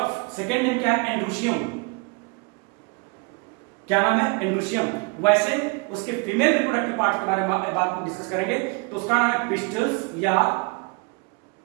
सेकेंड नेम क्या है? एंड्रोशियम। क्या नाम है? एंड्रोशियम। वैसे उसके फीमेल रिप्रोडक्टिव पार्ट के बारे में बात डिस्कस करेंगे तो उसका नाम है पिस्टल्स या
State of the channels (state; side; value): quieter; left; 30.3 dB